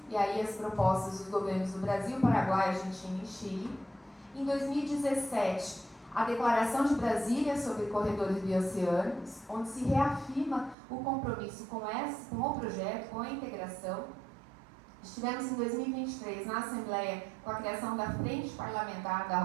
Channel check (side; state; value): left; drops out; at 10.8 s